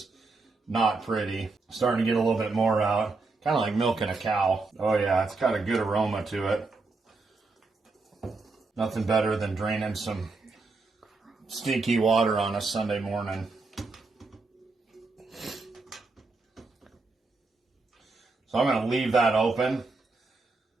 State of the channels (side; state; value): left; quieter; 3.7 dB